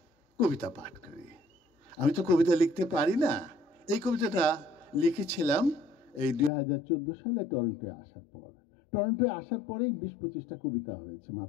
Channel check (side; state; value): right; drops out; at 6.5 s